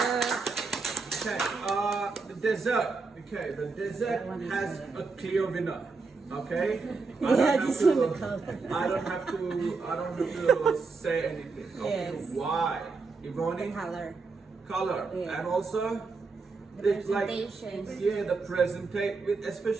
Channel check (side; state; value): left; quieter; 4.3 dB